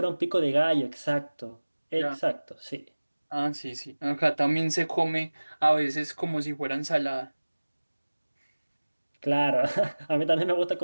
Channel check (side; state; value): both; inverted; correlation -1.00